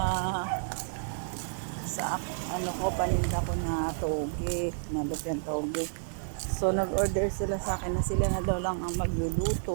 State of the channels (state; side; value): silent; left; digital silence